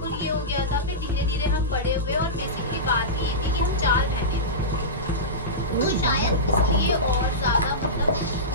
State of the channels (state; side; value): normal; both; correlation -0.16